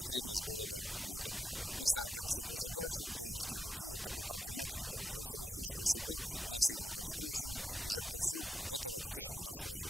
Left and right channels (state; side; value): normal; both; correlation 0.85